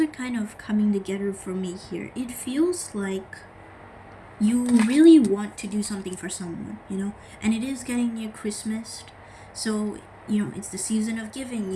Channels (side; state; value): both; identical; correlation 1.00